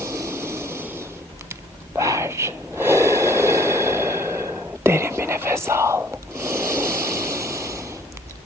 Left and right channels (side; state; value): both; normal; correlation 0.57